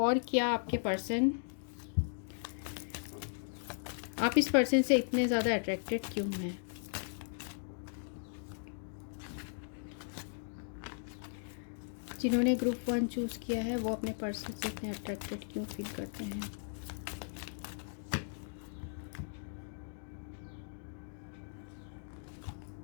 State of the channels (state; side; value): silent; right; digital silence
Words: क्या आपके पर्सन, आप इस पर्सन से इतने ज़्यादा अट्रैक्टेड क्यों हैं। जिन्होंने ग्रुप 1 चूज़ किया है वो अपने पर्सन से इतने अट्रैक्टेड क्यों फील करते हैं।